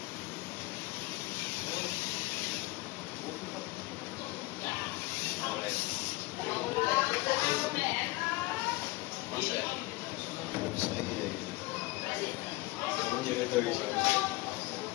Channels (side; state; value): right; quieter; 21.8 dB